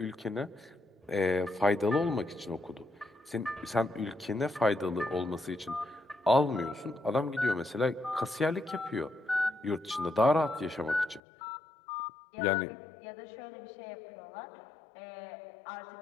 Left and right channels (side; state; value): right; drops out; at 11.2 s